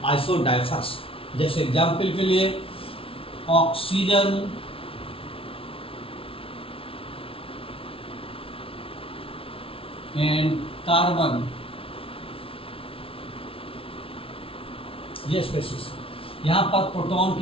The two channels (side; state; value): right; late; 0.26 ms